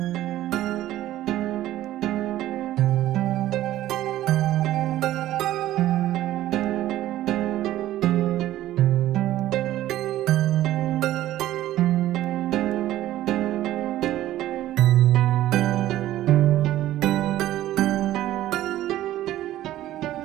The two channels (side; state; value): left; quieter; 14.0 dB